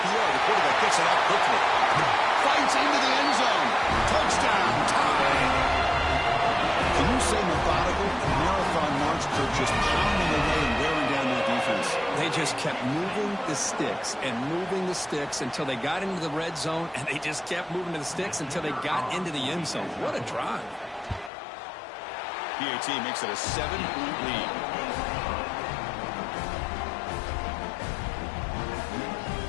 The quarterback gets it out quickly. Fights into the end zone. Touchdown, tie. Can you say methodical? Marathon march for just pounding away and wearing down that defense. They just kept moving the sticks and moving the sticks until they got into the red zone, and they just kept moving to the sticks until they got into the end zone. What a drive. PAT makes it a 7-point lead.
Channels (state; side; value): drops out; right; at 21.3 s